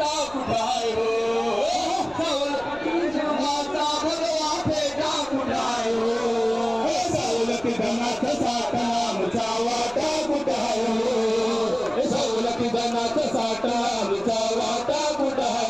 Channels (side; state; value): left; noise; rumble, 23 dB below the sound